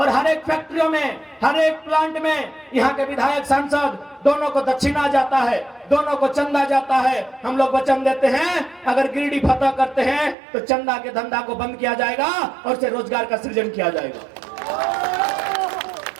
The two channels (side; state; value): left; drops out; at 10.4 s